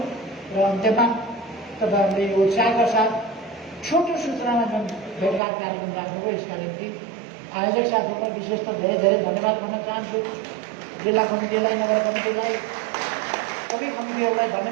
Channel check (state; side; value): drops out; left; at 5.4 s